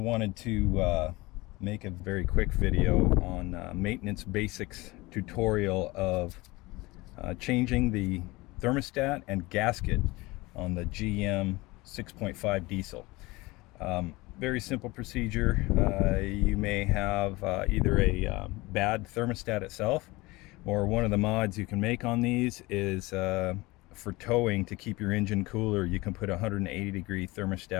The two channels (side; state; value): right; quieter; 22.0 dB